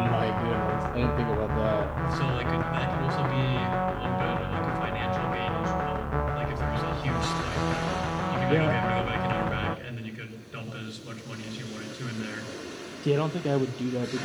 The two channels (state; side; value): identical; both; correlation 1.00